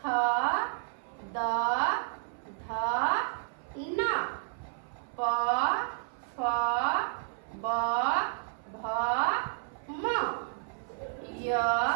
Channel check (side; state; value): left; silent; 57 dB below the other